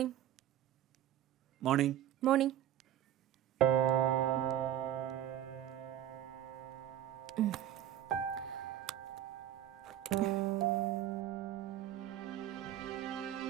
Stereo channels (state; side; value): quieter; left; 11.5 dB